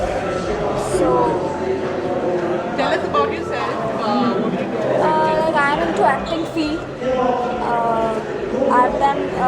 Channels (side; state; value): both; identical; correlation 1.00